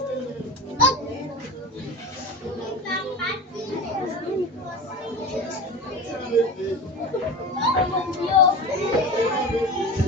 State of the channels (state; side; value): normal; both; correlation 0.30